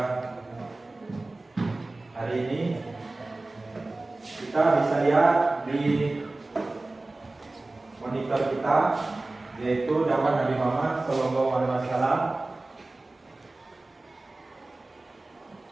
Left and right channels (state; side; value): quieter; left; 3.0 dB